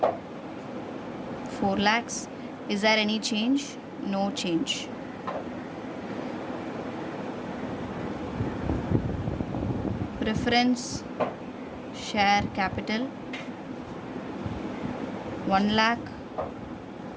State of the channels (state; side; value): identical; both; correlation 1.00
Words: 4 lakhs. Is there any change? No change. Preference share capital 1 lakh